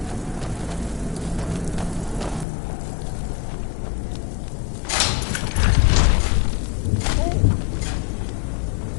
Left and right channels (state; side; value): drops out; right; at 2.5 s